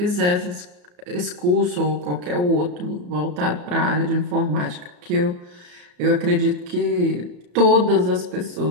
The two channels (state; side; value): late; left; 34 ms